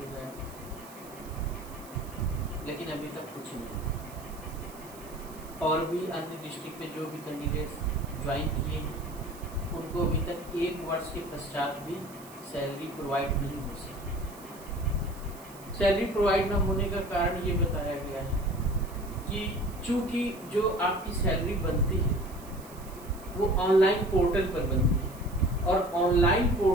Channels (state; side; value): noise; right; hiss, 20 dB below the sound